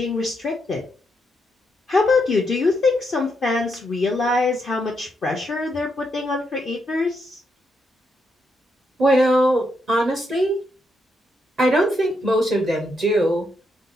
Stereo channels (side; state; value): both; normal; correlation 0.80